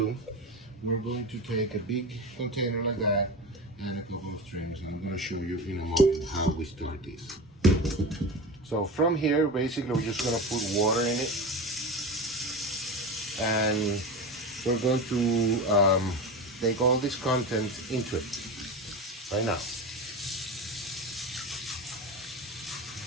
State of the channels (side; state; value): both; normal; correlation 0.26